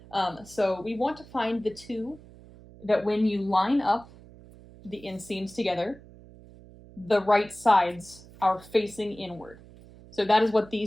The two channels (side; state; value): right; noise; hum, 21 dB below the sound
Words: So we want to find the 2 that when you line up the inseams together, the right sides are facing inward. So that is what